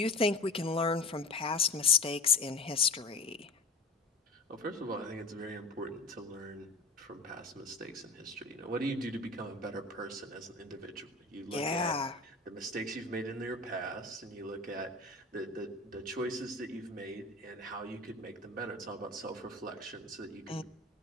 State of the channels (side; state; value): right; quieter; 3.4 dB